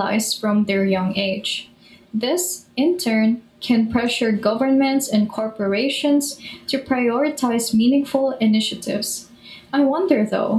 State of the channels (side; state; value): both; identical; correlation 1.00